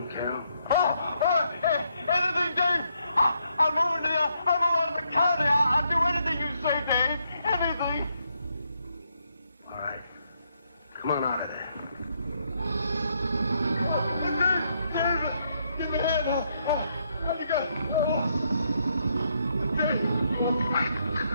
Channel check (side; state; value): both; inverted; correlation -0.75